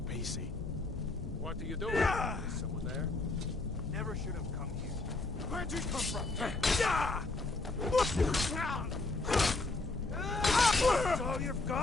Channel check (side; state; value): right; quieter; 3.3 dB